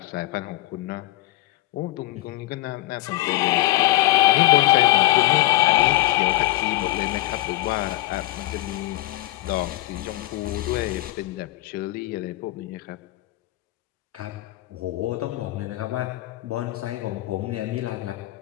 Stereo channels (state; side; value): quieter; right; 17.4 dB